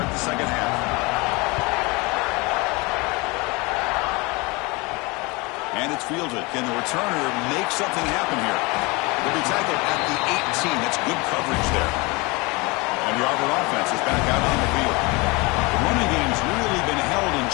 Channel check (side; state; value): right; quieter; 26.0 dB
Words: the 2nd half. And it's fielded. Can the returner make something happen here? Will be tackled at the 18. That's good coverage there. And the Auburn offense is back out on the field. The running game's really been held in